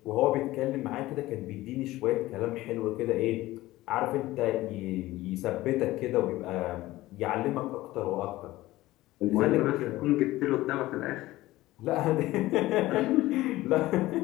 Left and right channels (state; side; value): quieter; right; 17.3 dB